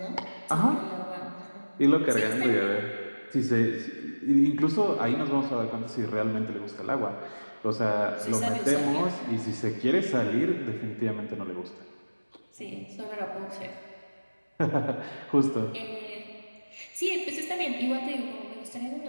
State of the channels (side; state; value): both; inverted; correlation -1.00